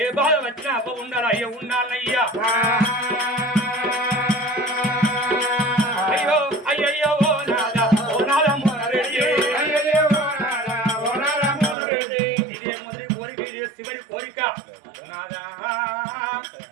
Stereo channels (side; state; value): left; drops out; at 11.8 s